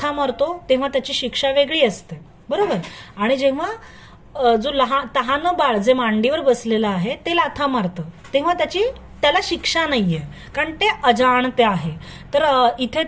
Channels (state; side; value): identical; both; correlation 1.00